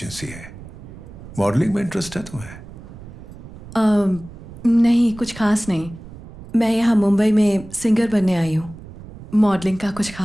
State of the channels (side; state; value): right; noise; rumble, 16 dB below the sound